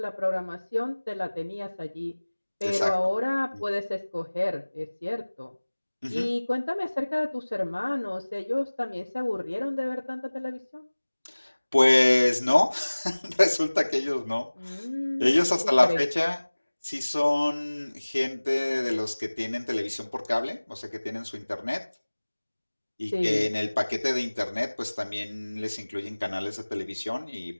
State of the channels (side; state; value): both; inverted; correlation -1.00